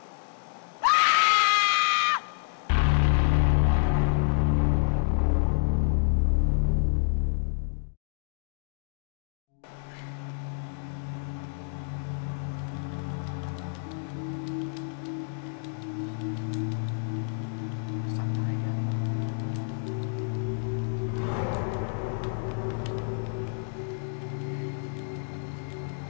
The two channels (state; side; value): silent; right; digital silence